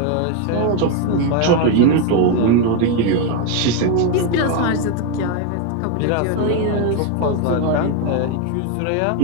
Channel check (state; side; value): different; both; correlation 0.01